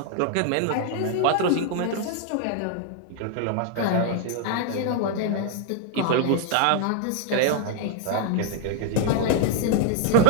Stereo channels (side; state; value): both; different; correlation 0.00